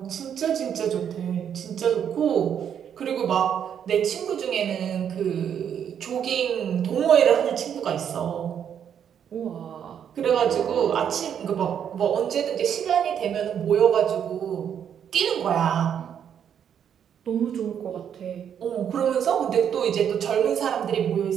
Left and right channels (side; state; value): left; quieter; 8.6 dB